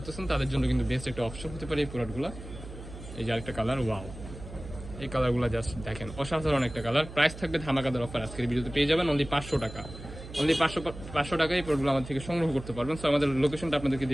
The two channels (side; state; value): right; noise; hum, 13 dB below the sound